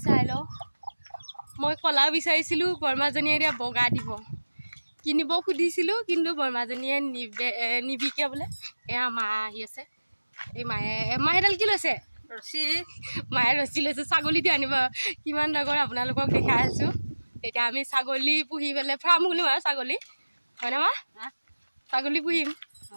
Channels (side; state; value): both; inverted; correlation -1.00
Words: চাই ল মই কলা বিচাৰিছিলো বৰমাজনীয়ে এতিয়া বগা দিব কিনিব খুদিছিলো কিন্তু বৰমাজনীয়ে নিবিকে বলে এয়া মা আহি আছে এই মাহেডাল কি লৈছে ৰছী মায়ে ৰছী লৈছে ছাগলীটো আনিব কিমান ডাঙৰ আপোনালোকক দেখাই আছো এতিয়া আমি ছাগলী পুহি পেলাই ফাৰ্ম খুলিম আৰু ছাগলী হয়নে মা ছাগলী পুহিম